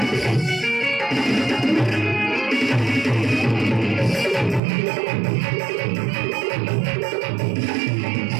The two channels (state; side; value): drops out; left; at 4.6 s